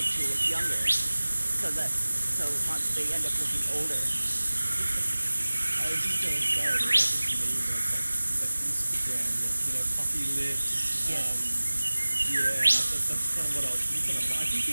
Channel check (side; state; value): both; inverted; correlation -1.00